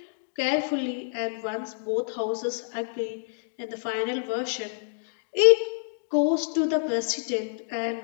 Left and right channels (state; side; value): silent; right; digital silence